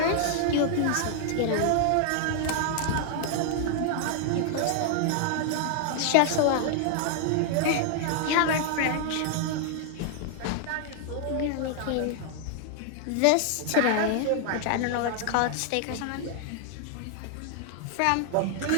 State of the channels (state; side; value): different; both; correlation 0.00